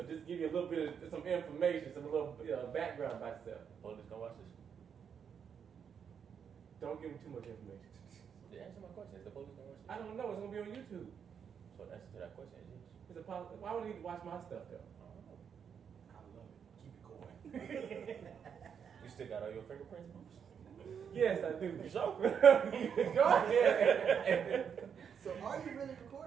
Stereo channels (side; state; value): left; quieter; 7.4 dB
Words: just give you a little bit of some information, some little background about yourself. Police gonna watch this. Don't give them too much information. Answer my question. Is the police gonna watch this? I don't know. It's gonna be on YouTube. So the answer to that question is yes. It's a why would they need to watch my stuff though? I don't know. I love it. Keep it going. You still got all your fingerprints, Bruce? Yes, I do. You sure? Go ahead. So are you really